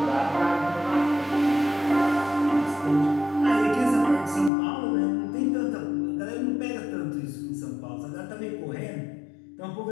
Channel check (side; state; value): right; drops out; at 4.5 s